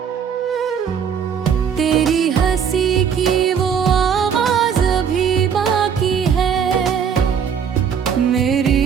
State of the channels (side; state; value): left; quieter; 7.4 dB